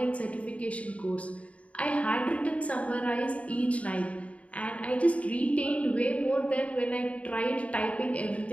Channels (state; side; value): late; right; 0.065 ms